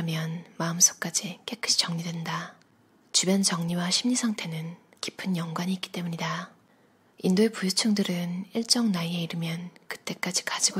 마음속까지 깨끗이 정리된다. 주변 정리와 심리 상태는 깊은 연관이 있기 때문이다. 인도의 부유층들은 일정 나이에 이르면 그때까지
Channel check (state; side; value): identical; both; correlation 1.00